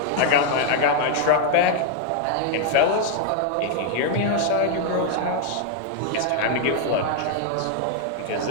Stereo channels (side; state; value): both; different; correlation 0.00